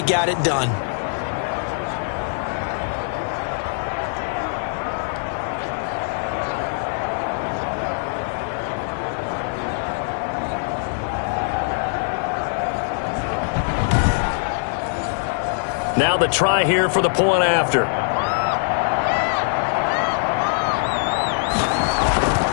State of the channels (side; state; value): right; silent; 63 dB below the other